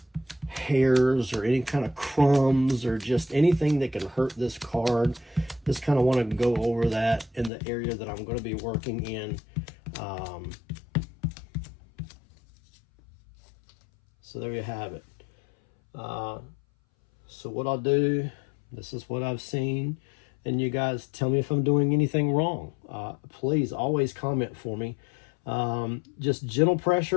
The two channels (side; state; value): right; drops out; at 7.5 s